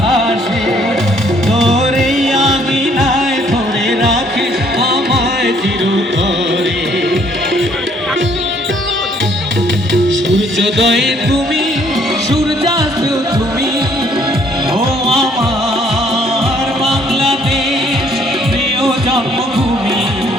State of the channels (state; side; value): normal; both; correlation 0.64